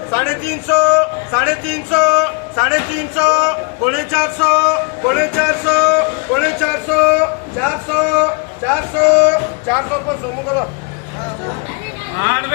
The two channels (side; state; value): right; quieter; 33.1 dB